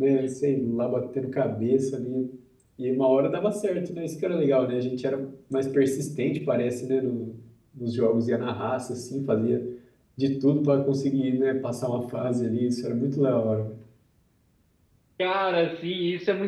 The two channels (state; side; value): identical; both; correlation 1.00